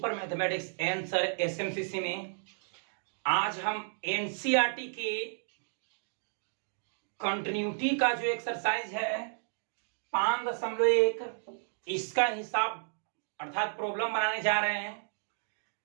mathematics answer SMCC में। आज हम एनसीईआरटी के कंटिन्यूटी का जो एक्सरसाइज है 5.1 इसका हिसाब अर्थात प्रॉब्लम बनाने जा रहे हैं।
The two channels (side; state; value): left; silent; digital silence